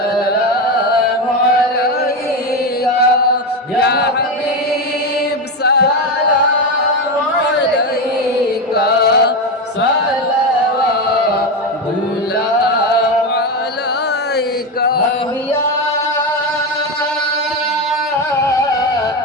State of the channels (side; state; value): both; normal; correlation 0.14